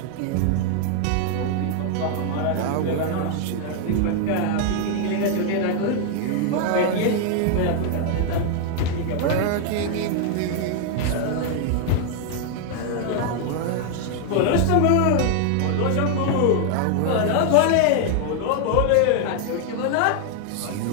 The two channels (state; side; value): different; both; correlation 0.00